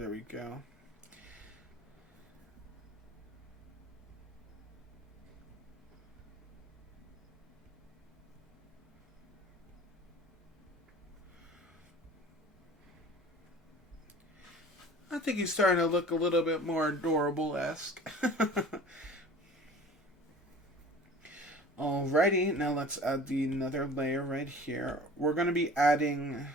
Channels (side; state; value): both; normal; correlation 0.43